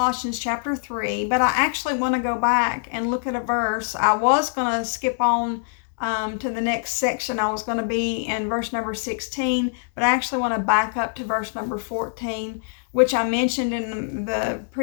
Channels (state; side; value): silent; right; digital silence